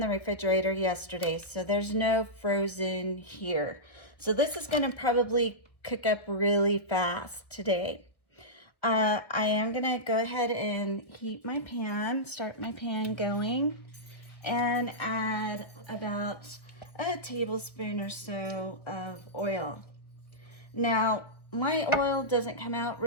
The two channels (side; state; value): right; late; 1.1 ms